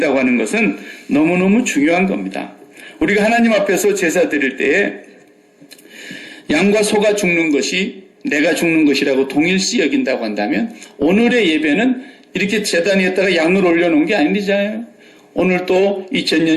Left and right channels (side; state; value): both; identical; correlation 1.00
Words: 하는 것은 너무너무 중요한 겁니다. 우리가 하나님 앞에서 제사 드릴 때에 양과 소가 죽는 것이 내가 죽는 것이라고 동일시 여긴다고 한다면 오늘의 예배는 이렇게 제단 위에다가 양을 올려놓은 게 아니잖아요. 오늘 또